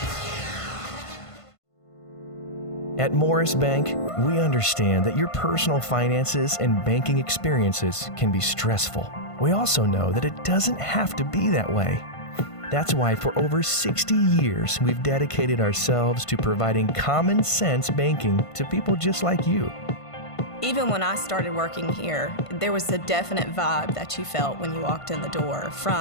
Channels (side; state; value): right; late; 1.5 ms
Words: At Morris Bank, we understand that your personal finances and banking experiences can be stressful. We also know that it doesn't have to be that way. That's why for over 60 years, we've dedicated ourselves to providing common sense banking to people just like you. Even when I started working here, there was a definite vibe that you felt when you walked in the door,